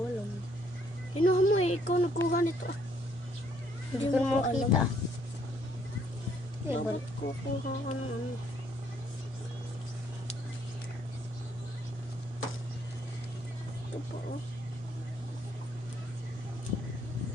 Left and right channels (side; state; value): both; normal; correlation 0.67